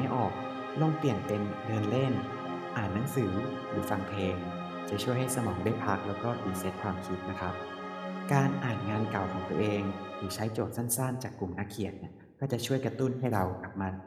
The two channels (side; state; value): both; identical; correlation 1.00